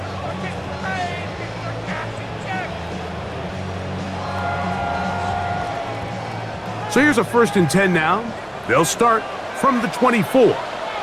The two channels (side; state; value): both; identical; correlation 1.00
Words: So here's a 1st and 10 now. They'll start from the 24.